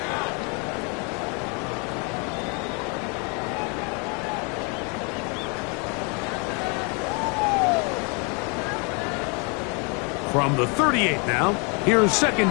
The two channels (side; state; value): right; quieter; 33.8 dB